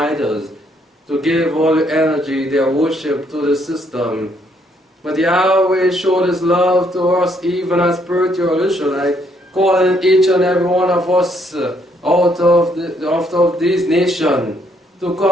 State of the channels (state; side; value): normal; both; correlation 0.70